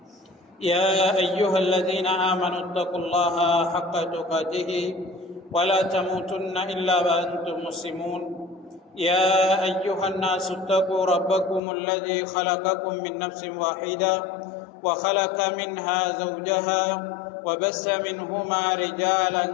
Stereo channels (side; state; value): right; drops out; at 11.6 s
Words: يا أيها الذين آمنوا اتقوا الله حق تقاته ولا تموتن إلا وأنتم مسلمون يا أيها الناس اتقوا ربكم الذي خلقكم من نفس واحدة وخلق منها زوجها وبث منهما رجالا